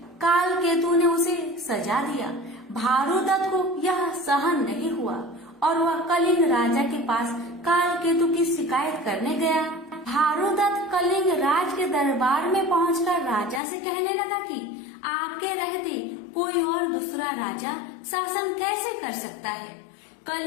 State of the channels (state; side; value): drops out; right; at 13.6 s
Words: काल केतु ने उसे सजा दिया। भानुदत्त को यह सहन नहीं हुआ और वह कलिंग राजा के पास काल केतु की शिकायत करने गया। भानुदत्त कलिंग राज के दरबार में पहुंचकर राजा से कहने लगा कि आपके रहते कोई और दूसरा राजा शासन कैसे कर सकता है।